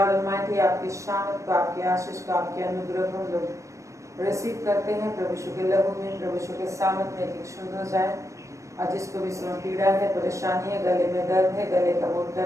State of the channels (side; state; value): left; late; 0.15 ms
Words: ऑलमाइटी, आपकी शान को, आपकी आशीष को, आपके अनुग्रह को हम लोग रिसीव करते हैं। प्रभु यीशु के लहू में, प्रभु यीशु के सामर्थ्य में एक शुद्ध हो जाए। और जिसको भी इसमें पीड़ा है, परेशानी है, गले में दर्द है, गले का